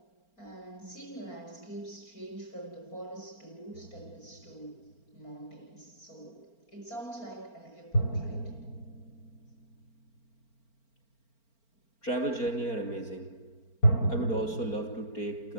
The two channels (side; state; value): right; late; 4.4 ms